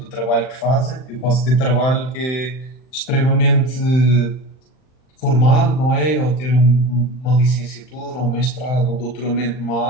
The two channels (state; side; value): late; right; 39 ms